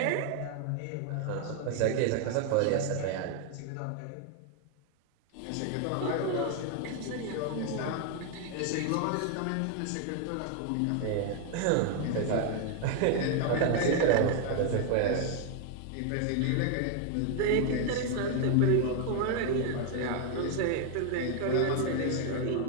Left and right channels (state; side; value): different; both; correlation 0.00